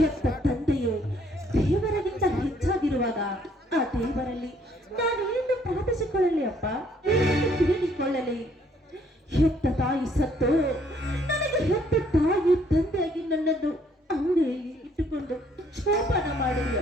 ತಂದೆಯು ದೇವರಿಗಿಂತ ಹೆಚ್ಚಾಗಿರುವಾಗ ಆ ದೇವರಲ್ಲಿ ನಾನು ಏನು ಪ್ರಾರ್ಥಿಸಿಕೊಳ್ಳಲಿ ಅಪ್ಪ, ಏನು ತಿಳಿದುಕೊಳ್ಳಲಿ? ಹೆತ್ತ ತಾಯಿ ಸತ್ತು ನನಗೆ ಹೆತ್ತ ತಾಯಿ ತಂದೆಯಾಗಿ ನನ್ನನ್ನು ಅಂಗಡಿಯಲ್ಲಿ ಇಟ್ಟುಕೊಂಡು ಶೋಭನ ಮಾಡಿದೆ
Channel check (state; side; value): normal; both; correlation 0.65